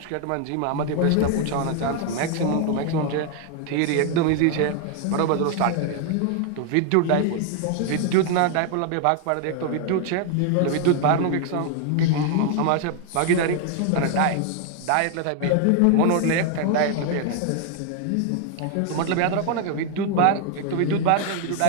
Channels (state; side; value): different; both; correlation 0.00